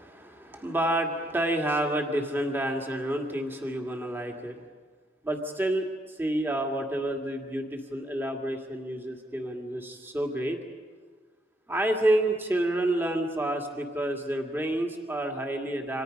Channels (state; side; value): normal; both; correlation 0.74